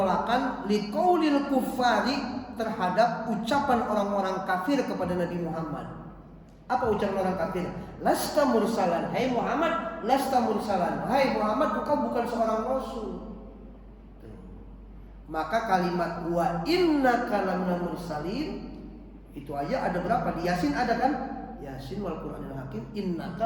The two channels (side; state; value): both; identical; correlation 1.00